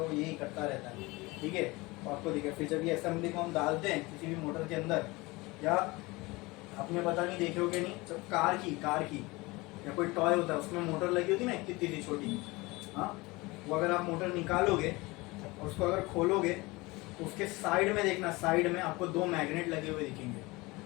यही करता रहता है, ठीक है? तो आपको दिखे फिर जब ये असेंबली को हम डालते हैं किसी भी मोटर के अंदर, या आपने पता नहीं देखे हो कि नहीं, जब कार की या कोई टॉय होता है उसमें मोटर लगी होती है ना कितनी सी छोटी, हाँ, वो अगर आप मोटर निकालोगे और उसको अगर खोलोगे तो उसके साइड में देखना, साइड में आपको 2 मैग्नेट लगे हुए दिखेंगे।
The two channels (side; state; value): right; quieter; 22.9 dB